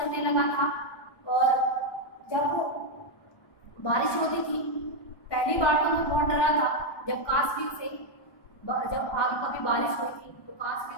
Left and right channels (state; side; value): late; right; 1.2 ms